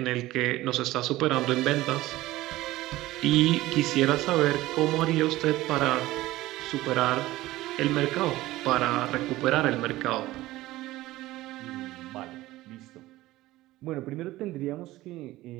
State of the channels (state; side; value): quieter; left; 17.2 dB